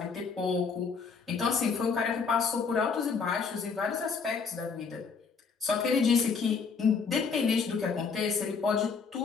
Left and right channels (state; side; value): quieter; right; 5.4 dB